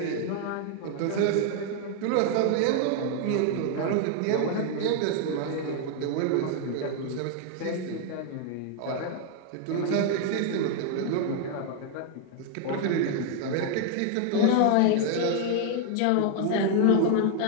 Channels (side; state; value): both; different; correlation 0.00